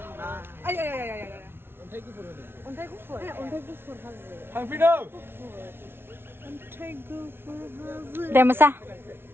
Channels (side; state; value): left; late; 0.11 ms